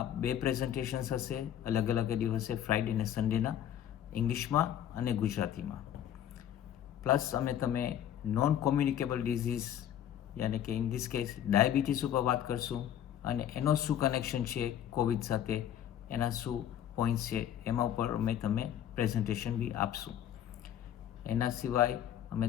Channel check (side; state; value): right; quieter; 10.5 dB